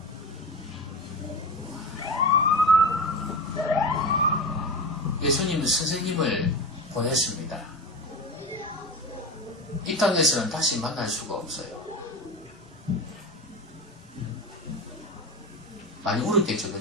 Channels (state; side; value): normal; both; correlation 0.25